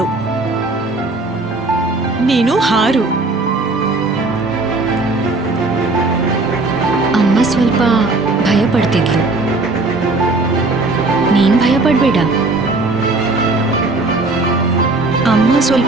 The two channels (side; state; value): left; quieter; 3.3 dB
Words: ನೀನು ಹಾರು. ಅಮ್ಮ ಸ್ವಲ್ಪ ಭಯ ಪಡ್ತಿದ್ಲು, ನೀನ್ ಭಯ ಪಡ್ಬೇಡ. ಅಮ್ಮ